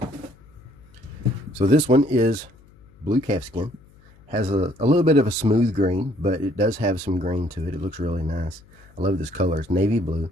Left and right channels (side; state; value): left; noise; hum, 27 dB below the sound